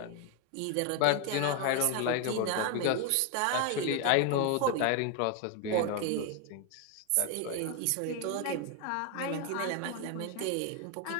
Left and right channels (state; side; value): different; both; correlation 0.01